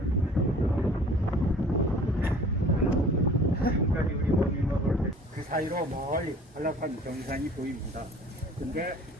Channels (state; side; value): normal; both; correlation 0.48